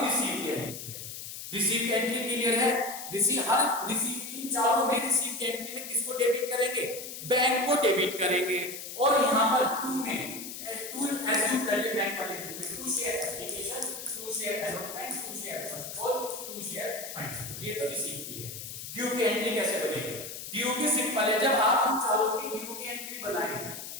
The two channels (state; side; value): noise; left; hiss, 9 dB below the sound